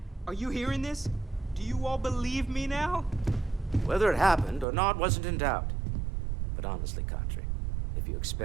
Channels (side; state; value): left; drops out; at 4.7 s